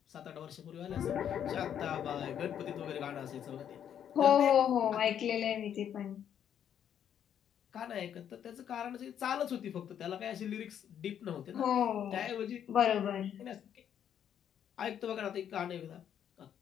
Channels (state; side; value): quieter; right; 9.3 dB